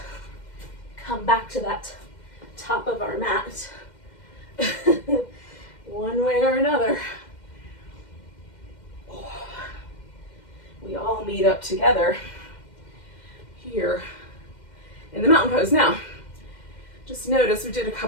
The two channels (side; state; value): right; late; 2.1 ms